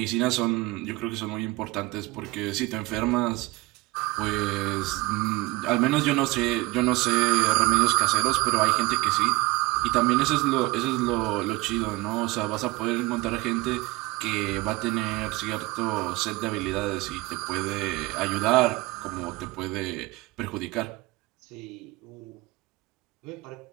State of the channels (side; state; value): left; quieter; 21.8 dB